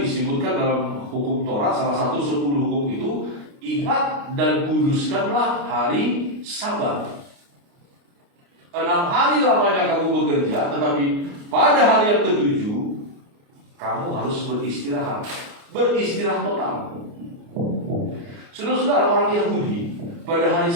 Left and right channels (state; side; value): late; left; 29 ms